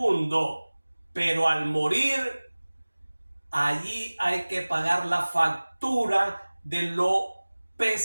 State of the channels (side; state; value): both; inverted; correlation -1.00